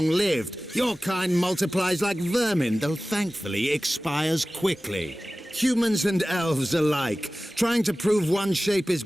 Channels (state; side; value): normal; both; correlation 0.97